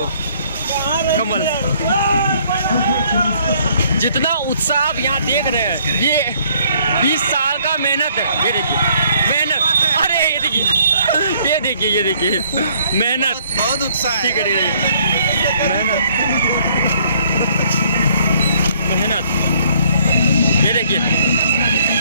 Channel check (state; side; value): inverted; both; correlation -0.63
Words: कमल। जितना उत्साह आप यहाँ देख रहे हैं ये 20 साल का मेहनत है। ये देखिए मेहनत, अरे ये देखिए मेहनत, बहुत उत्साह है। ठीक है मेहनत।